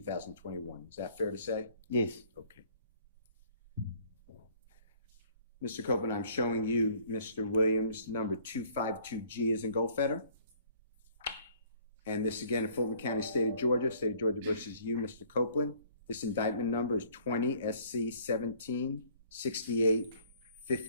Is that fair to say? Yes. Okay. Mr. Copeland, I'm showing you Mr. Williams, number 252G is in Goldfetter. And this again in Fulton County, State of Georgia versus you, Mr. Copeland. This indictment number is 20 SC 17 68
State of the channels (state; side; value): inverted; both; correlation -0.57